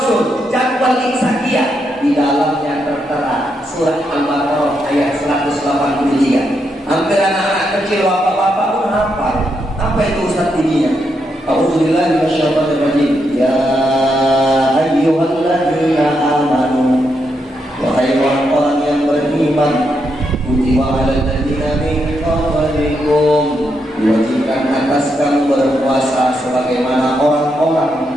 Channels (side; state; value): both; normal; correlation 0.81